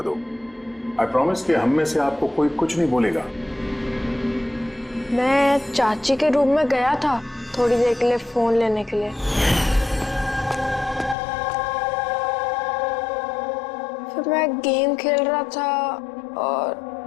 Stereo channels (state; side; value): drops out; right; at 11.2 s